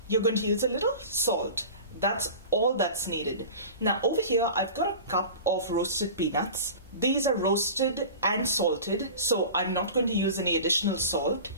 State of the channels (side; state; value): both; inverted; correlation -0.36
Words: you're going to use a little salt. That's all that's needed. Now over here I've got a cup of roasted peanuts. These are roasted and salted, so I'm not going to use any additional salt.